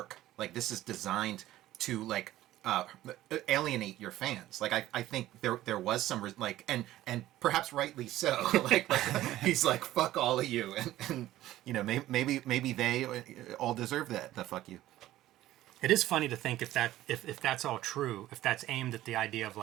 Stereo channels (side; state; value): left; quieter; 14.7 dB